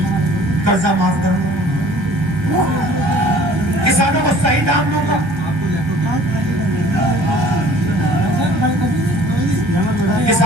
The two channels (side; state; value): left; late; 1.3 ms